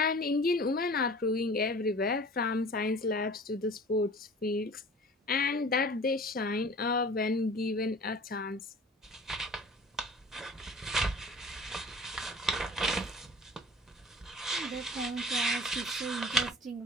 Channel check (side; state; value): both; normal; correlation 0.44